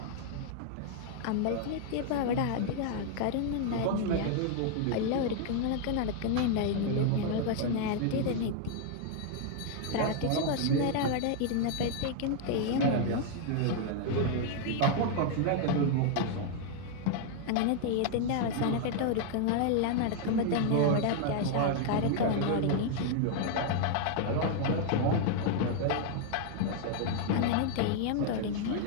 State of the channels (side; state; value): both; different; correlation 0.00